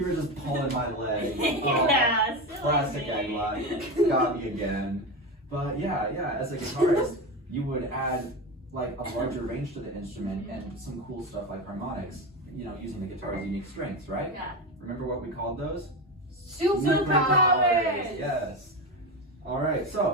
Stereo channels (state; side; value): normal; both; correlation 0.19